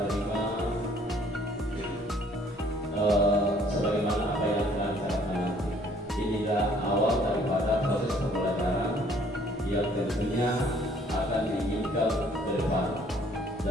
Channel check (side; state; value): both; normal; correlation 0.60